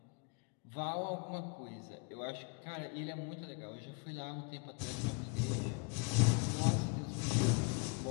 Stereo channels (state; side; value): quieter; right; 32.7 dB